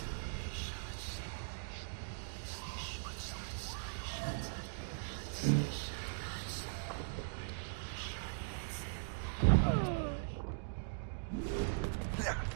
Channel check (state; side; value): silent; left; digital silence